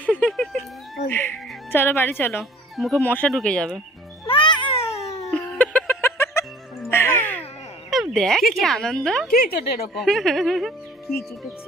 চলো বাড়ি চলো, মুখে মশা ঢুকে যাবে। দেখ কি আনন্দ। কি চোট এরকম? কি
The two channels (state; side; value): normal; both; correlation 0.52